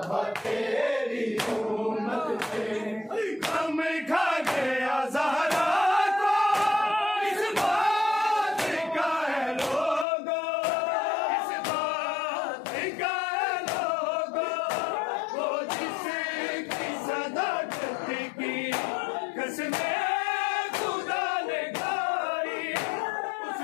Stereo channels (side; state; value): right; drops out; at 10.1 s